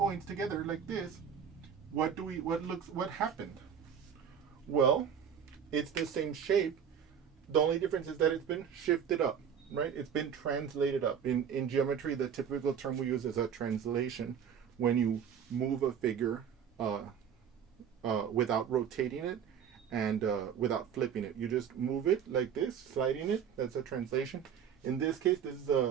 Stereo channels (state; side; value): quieter; left; 8.0 dB